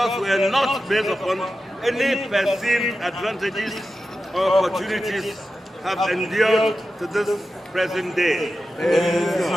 we are not based upon any perceived advantages or opportunities, have endured to this present day.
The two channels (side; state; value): both; normal; correlation 0.92